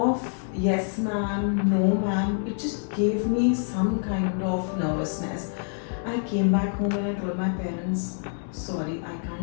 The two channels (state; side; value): silent; right; digital silence